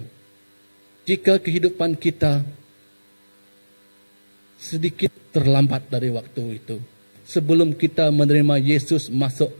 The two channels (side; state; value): both; inverted; correlation -1.00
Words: jika kehidupan kita sedikit terlambat dari waktu itu, sebelum kita menerima Yesus masuk